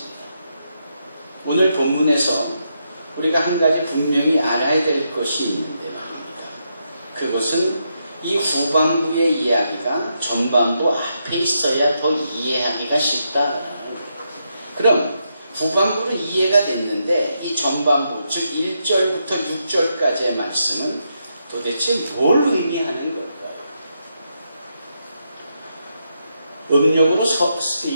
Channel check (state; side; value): inverted; both; correlation -0.81